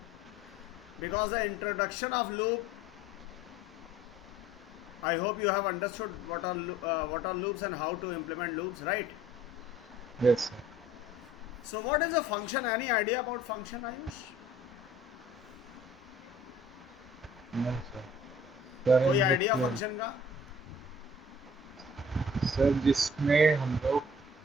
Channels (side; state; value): both; normal; correlation 0.52